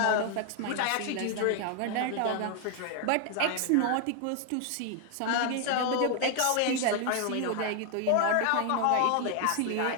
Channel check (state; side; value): different; both; correlation 0.00